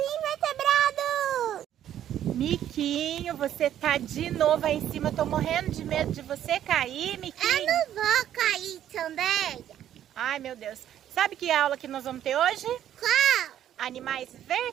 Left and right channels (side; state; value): left; quieter; 11.0 dB